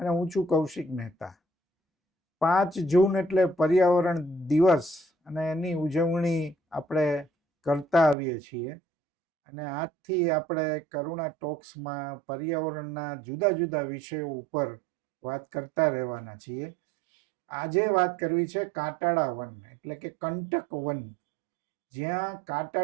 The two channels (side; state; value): left; drops out; at 8.2 s